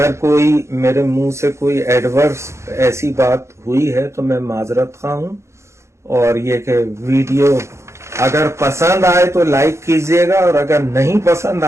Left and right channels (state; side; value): late; left; 0.14 ms